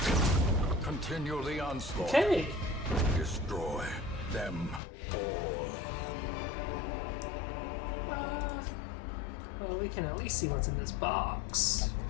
Continue the onslaught. Okay. Destroy them all. Well, we can at least see what's in this box.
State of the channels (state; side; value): drops out; right; at 4.8 s